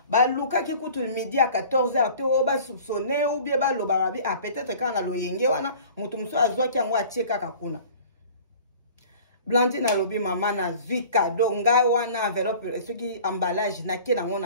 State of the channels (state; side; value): inverted; both; correlation -0.45